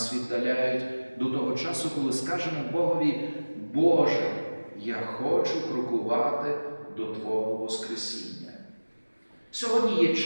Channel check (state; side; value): inverted; both; correlation -1.00